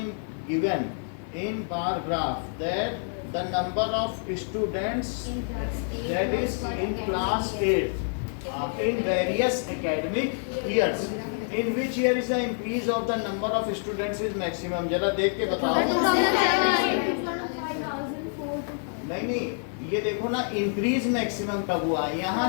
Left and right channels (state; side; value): silent; right; 60 dB below the other